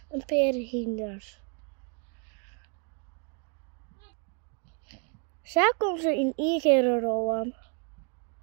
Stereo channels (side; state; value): left; quieter; 38.5 dB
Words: een paar hinders. Zo komt ze in één keer rollen.